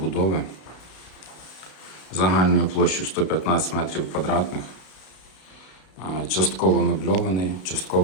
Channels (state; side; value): late; right; 33 ms